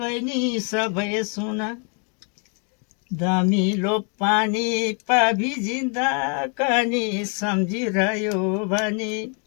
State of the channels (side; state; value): right; quieter; 39.2 dB